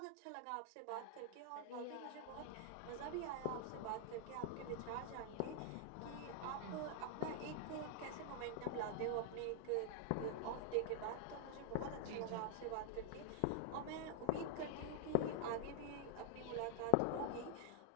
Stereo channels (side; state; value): both; different; correlation 0.00